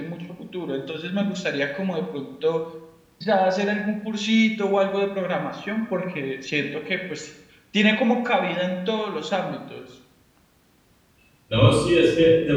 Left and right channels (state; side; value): identical; both; correlation 1.00